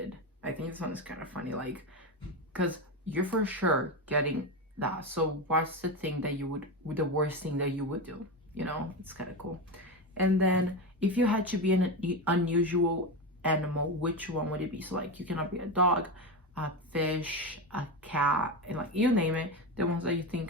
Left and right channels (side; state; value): both; normal; correlation 0.17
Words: I think this one is kind of funny, because you're for sure getting that. So what's the thing that you would, the worst thing that you would do? It's kind of cool. And then if you had to be an unusual animal, which one would it be? So you cannot be a dog, a fish, a cat, and you name it, the ones that you